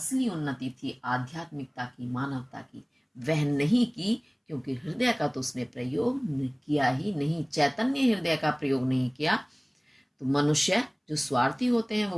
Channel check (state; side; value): identical; both; correlation 1.00